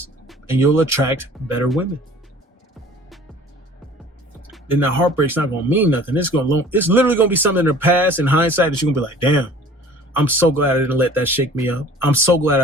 and you'll attract better women. Then that heartbreak's not going to mean nothing. It's literally going to be something in the past, in hindsight, that you're going to be like, damn, I'm so glad I didn't let that shake me up. I'm so glad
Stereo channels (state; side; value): normal; both; correlation 0.48